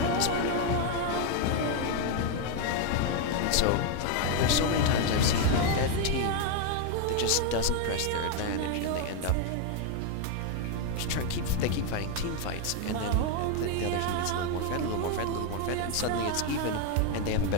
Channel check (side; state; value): both; different; correlation 0.01